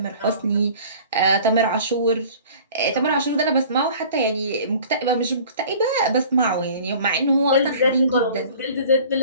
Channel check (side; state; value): both; inverted; correlation -0.46